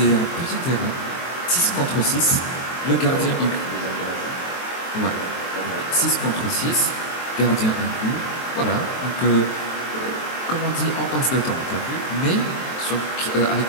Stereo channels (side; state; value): right; late; 23 ms